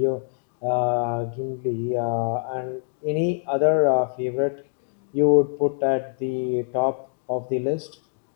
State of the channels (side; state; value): right; silent; digital silence